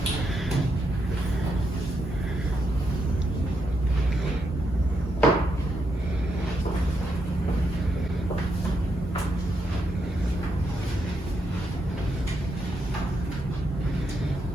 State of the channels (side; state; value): both; normal; correlation 0.80